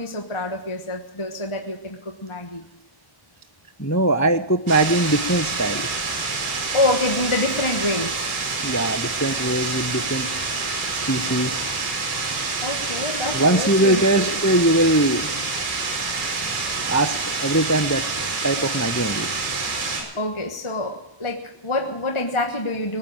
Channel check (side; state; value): right; late; 1.1 ms